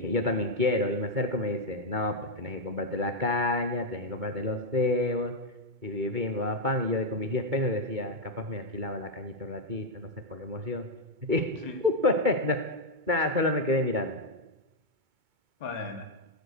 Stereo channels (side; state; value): left; late; 2.2 ms